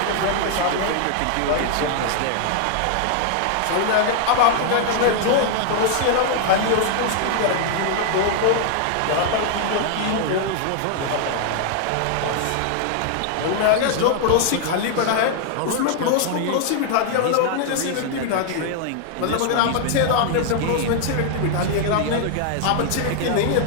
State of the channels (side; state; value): both; different; correlation 0.00